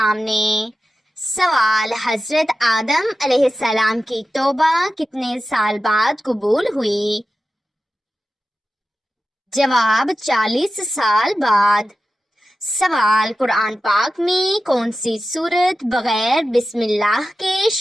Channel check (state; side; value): normal; both; correlation 0.93